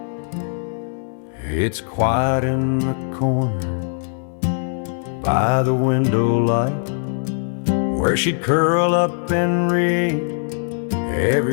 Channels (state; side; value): silent; right; 65 dB below the other